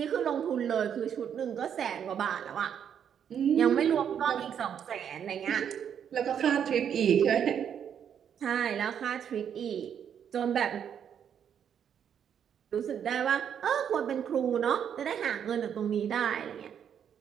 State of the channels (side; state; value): left; quieter; 8.5 dB